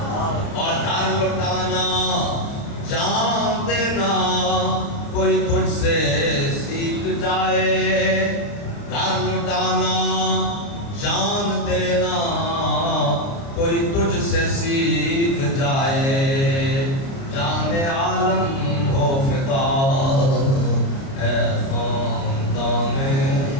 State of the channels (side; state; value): right; late; 30 ms